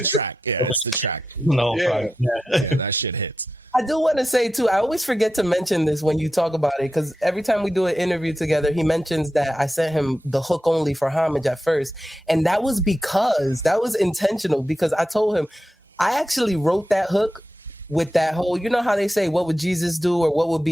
the track. Yeah, it's the track. No, yeah, that shit hits. I do want to say too, I always forget to mention this when you talk about it, because every time we do an interview together, he mentions that I sent him the hook only for Homage at first, and that was intentional, because I told him I actually wrote that hook with that whole, you know how they say, what would Jesus do or what would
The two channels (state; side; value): normal; both; correlation 0.90